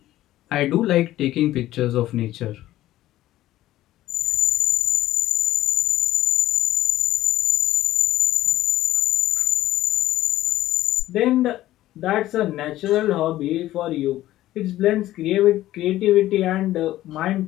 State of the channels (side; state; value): right; quieter; 14.8 dB